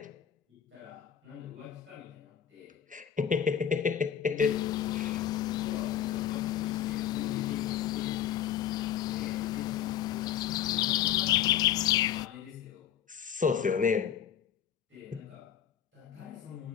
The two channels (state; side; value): quieter; right; 9.6 dB